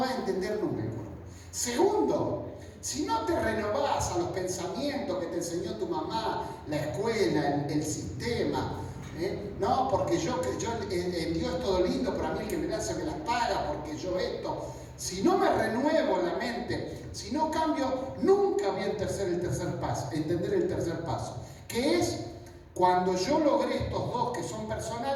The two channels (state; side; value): identical; both; correlation 1.00